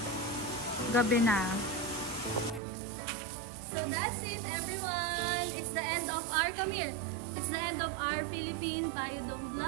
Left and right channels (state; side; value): drops out; left; at 2.6 s